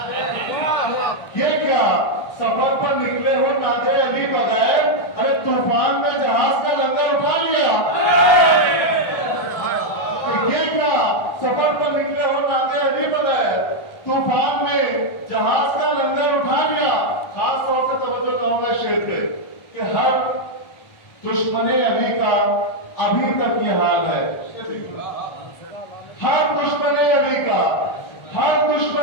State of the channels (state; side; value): late; right; 1.3 ms